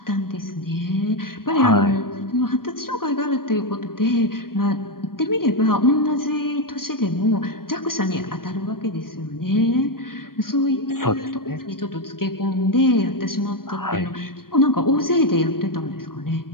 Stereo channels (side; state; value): right; late; 0.92 ms